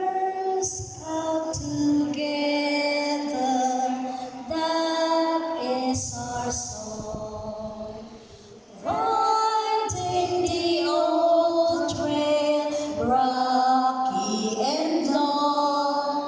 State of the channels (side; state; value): both; identical; correlation 1.00